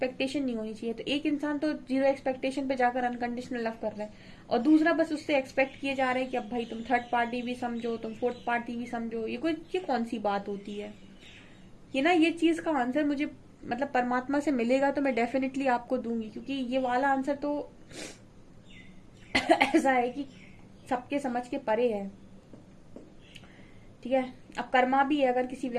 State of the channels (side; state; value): both; identical; correlation 1.00